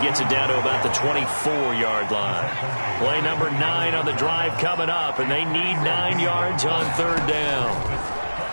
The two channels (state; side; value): inverted; both; correlation -1.00